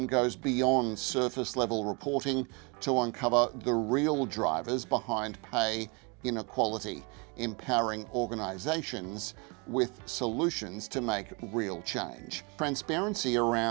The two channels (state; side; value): quieter; left; 31.2 dB